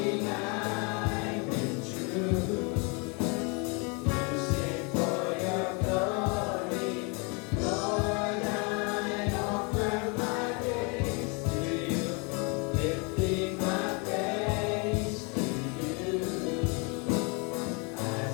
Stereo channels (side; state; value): right; quieter; 32.2 dB